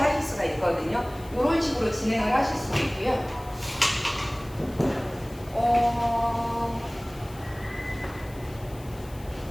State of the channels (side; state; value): left; noise; hiss, 22 dB below the sound